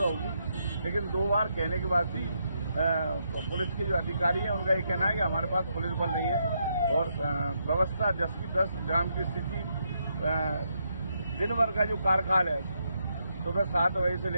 होगी। लेकिन 2 बार कहने के बाद भी पुलिस के जो अधिकारी हैं उनका ये कहना है कि हमारे पास पुलिस बल नहीं है और व्यवस्था 10 की 10 जाम की स्थिति, दिन भर का जो कार्यकाल है सुबह 7 बजे से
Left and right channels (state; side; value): inverted; both; correlation -0.79